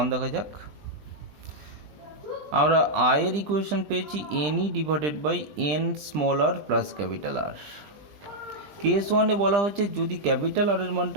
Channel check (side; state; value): left; late; 20 ms